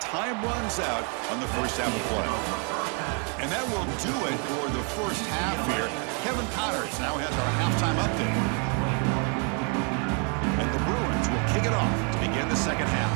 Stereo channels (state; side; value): quieter; left; 38.1 dB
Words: time runs out on the first half of play. And that will do it for the first half here. Kevin Connors now has our halftime update. And the Bruins will kick it off to begin the second half.